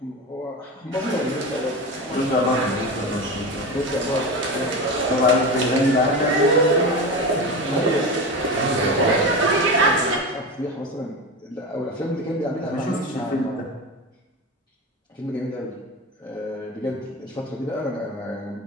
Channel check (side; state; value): both; normal; correlation 0.24